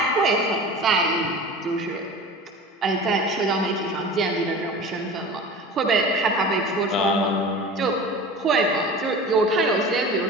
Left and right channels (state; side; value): normal; both; correlation 0.36